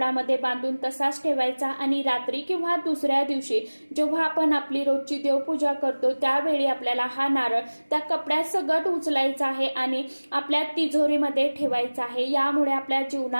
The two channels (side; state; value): both; inverted; correlation -1.00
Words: बांधून तसाच ठेवायचा. आणि रात्री किंवा दुसऱ्या दिवशी जेव्हा आपण आपली रोजची देवपूजा करतो त्यावेळी आपल्याला हा नारळ त्या कपड्यात सगट उचलायचा आहे आणि आपल्या तिजोरीमध्ये ठेवायचा आहे. यामुळे आपल्या